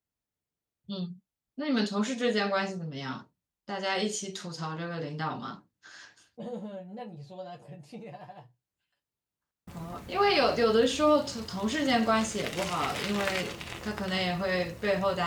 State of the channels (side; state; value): both; identical; correlation 1.00